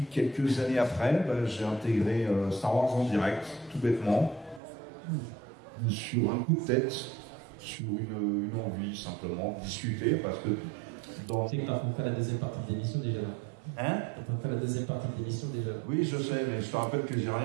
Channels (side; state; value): left; drops out; at 4.6 s